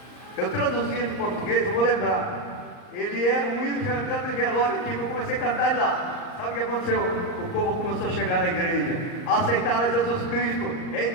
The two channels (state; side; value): late; right; 39 ms